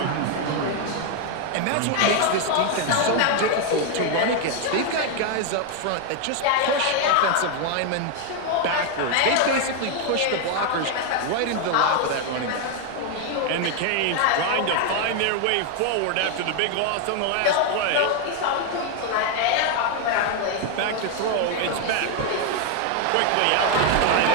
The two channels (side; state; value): both; different; correlation 0.01